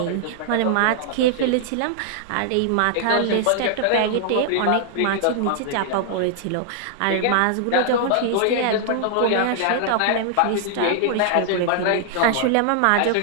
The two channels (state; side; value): different; both; correlation -0.01